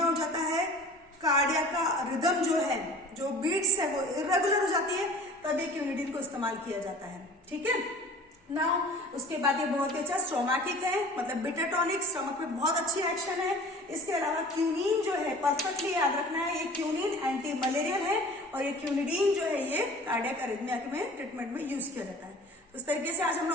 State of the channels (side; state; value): both; normal; correlation 0.44